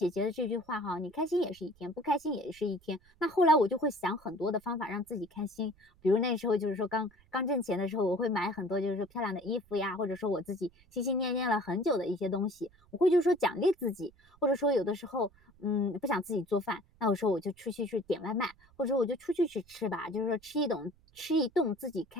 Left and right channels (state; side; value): noise; right; rumble, 29 dB below the sound